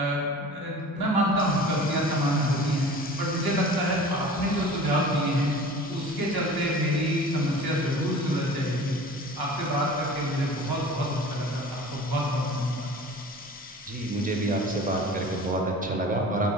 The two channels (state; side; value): normal; both; correlation 0.41